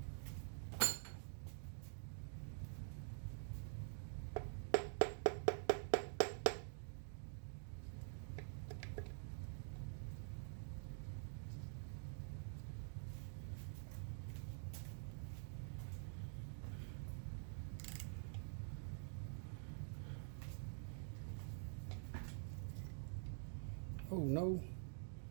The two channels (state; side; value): silent; left; digital silence